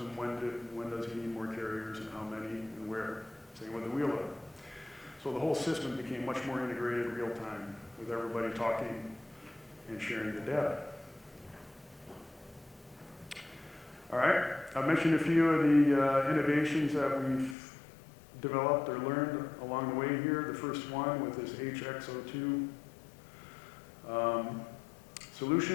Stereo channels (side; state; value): right; drops out; at 17.6 s